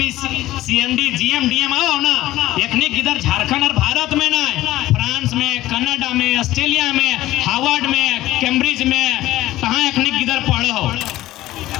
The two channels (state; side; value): quieter; right; 15.8 dB